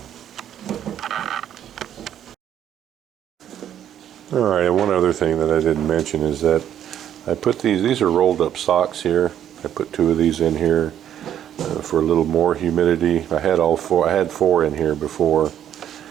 Alright, and one other thing that I didn't mention is that I put these are rolled up socks here. I put 2 of these in here for a little more humidity. I had 4 in here before.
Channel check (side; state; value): left; quieter; 10.3 dB